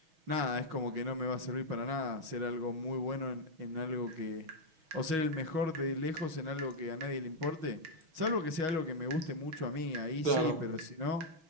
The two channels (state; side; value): late; left; 6.2 ms